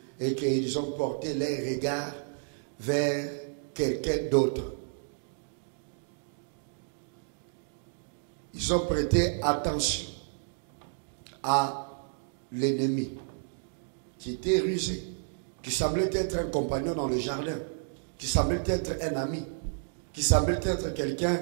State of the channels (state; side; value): silent; left; digital silence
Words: et qu'ils ont porté leurs regards vers quelqu'un d'autre. Ils ont prêté attention à l'ennemi qui était rusé, qui semblait être un compagnon dans le jardin, qui semblait être un ami, qui semblait être quelqu'un